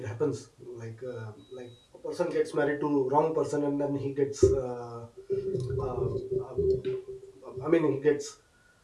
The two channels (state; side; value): identical; both; correlation 1.00